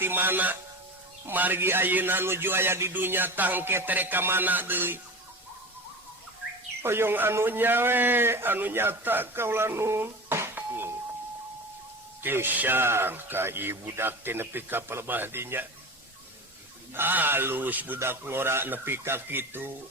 mana margi ayeuna nuju aya di dunya tangke tere ka mana deui hoyong anu nyawe anu nyata kaula nun Tisang ka ibu budak teh nepi ka pelebah dinya halus budak ngora nepi ka kitu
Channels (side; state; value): both; normal; correlation 0.30